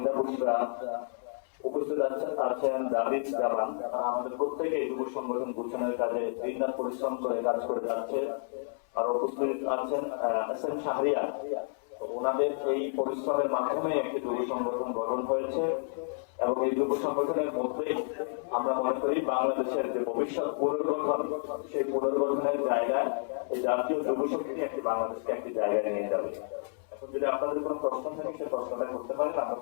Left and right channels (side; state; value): right; silent; 57 dB below the other